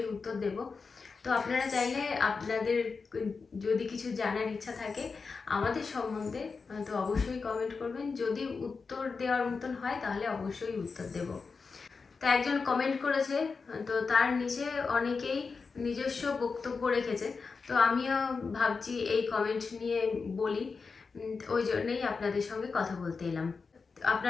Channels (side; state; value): right; quieter; 4.8 dB